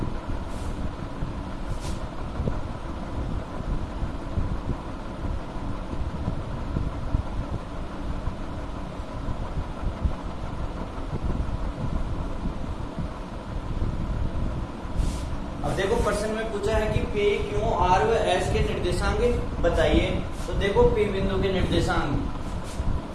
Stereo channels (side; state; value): both; identical; correlation 1.00